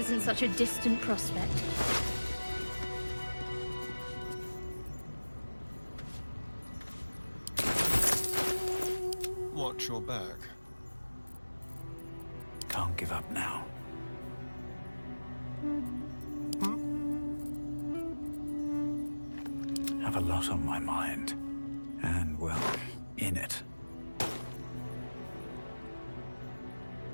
such a distant prospect. Watch your back. Can't give up now. Have a lot on my mind. And, well, in it.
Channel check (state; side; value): inverted; both; correlation -1.00